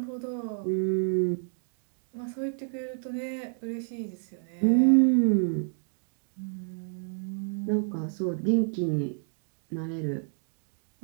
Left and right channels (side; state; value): left; silent; digital silence